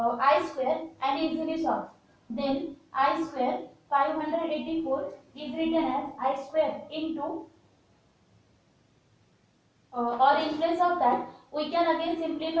square and easily solve. Then I square 584 is written as I square into, or in place of that we can again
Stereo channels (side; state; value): both; identical; correlation 1.00